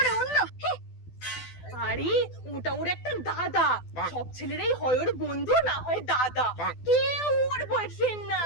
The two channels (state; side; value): late; right; 12 ms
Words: অন্য। আরে ওটা ওর একটা দাদা, সব ছেলেরাই হয় ওর বন্ধু, না হয় দাদা, কেউ ওর বয়ফ্রেন্ড না।